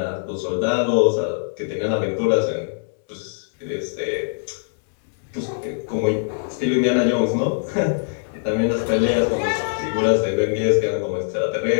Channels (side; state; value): right; silent; 64 dB below the other